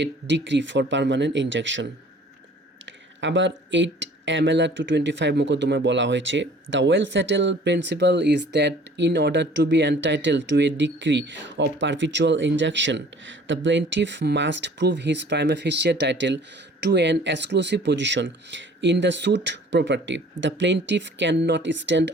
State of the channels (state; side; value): normal; both; correlation 0.51